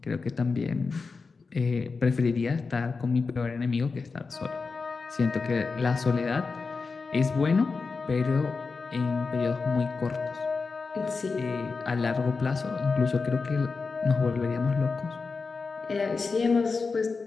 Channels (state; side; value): quieter; right; 4.5 dB